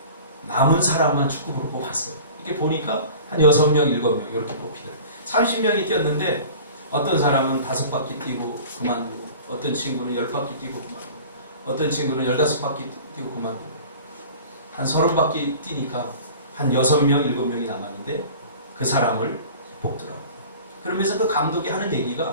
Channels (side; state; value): both; inverted; correlation -0.42